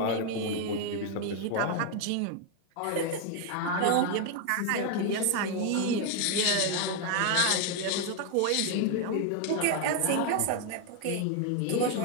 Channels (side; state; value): both; different; correlation 0.01